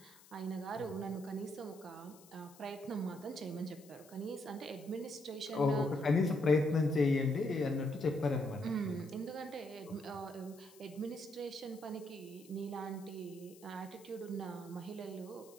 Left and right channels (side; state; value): left; noise; hiss, 23 dB below the sound